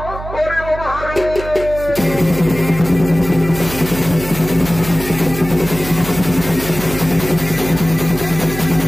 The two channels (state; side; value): noise; right; hum, 10 dB below the sound